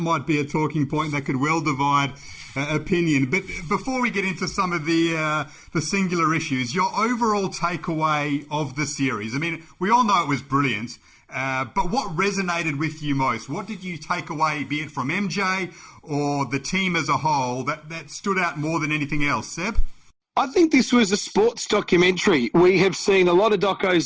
be a talking point that could well divide opinion. But before we get into some of the singular issues, your overall takeaway of the series. I mean, we all know it was brilliant, but what resonated with you most? What did you take away, be it from MJ or the team as a whole, that stood out more than anything else? Seb? I think this was a sports documentary. We have seen a lot of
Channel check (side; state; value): both; identical; correlation 1.00